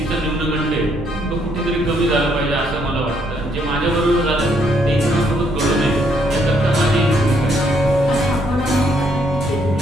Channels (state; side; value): noise; right; rumble, 11 dB below the sound